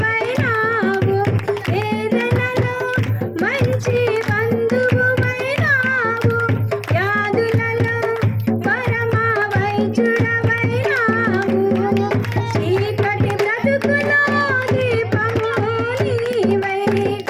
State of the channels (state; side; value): identical; both; correlation 1.00